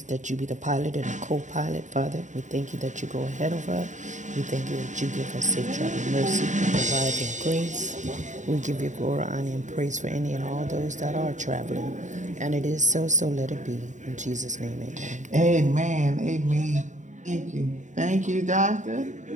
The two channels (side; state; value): left; late; 0.35 ms